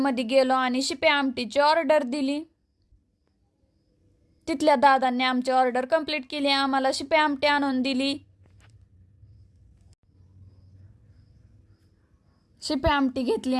गेलो आणि शिपे आमटीची ऑर्डर दिली. तिथल्या दादांनी आमची ऑर्डर कंप्लीट केली. आम्हाला शिपे आमटी आणून दिली. शिपे आमटी घेतली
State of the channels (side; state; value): both; identical; correlation 1.00